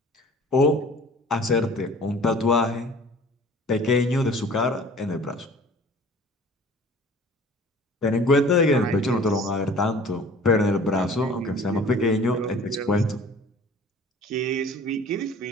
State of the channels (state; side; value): normal; both; correlation 0.47